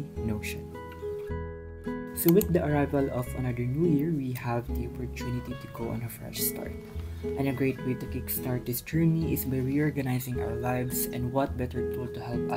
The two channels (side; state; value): both; identical; correlation 1.00